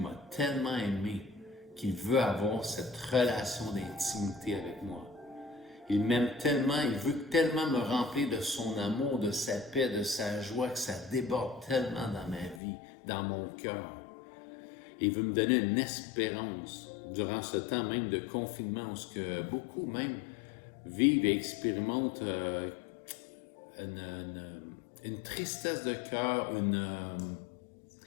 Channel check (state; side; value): drops out; right; at 12.6 s